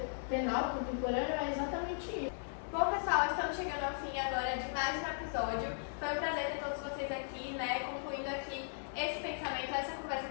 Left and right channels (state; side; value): silent; right; digital silence